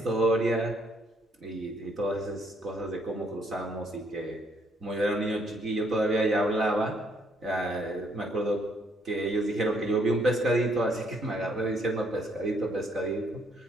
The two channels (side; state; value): both; normal; correlation 0.69